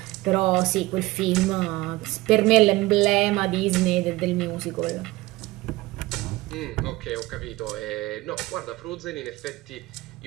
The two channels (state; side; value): quieter; left; 19.8 dB